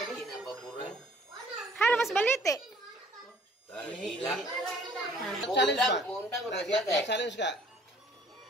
Kinababuran. Halo mas balite. Gila. Challenge ba? Undang udah teh. Challenge ka?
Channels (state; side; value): normal; both; correlation 0.56